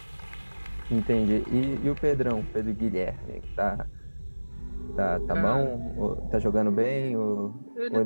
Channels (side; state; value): both; inverted; correlation -1.00